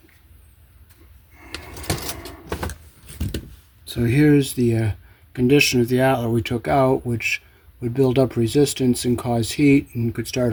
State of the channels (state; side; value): identical; both; correlation 1.00